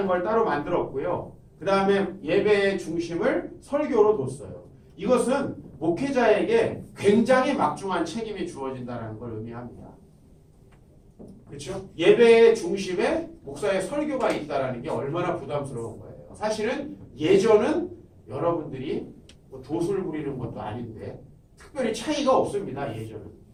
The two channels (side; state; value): both; identical; correlation 1.00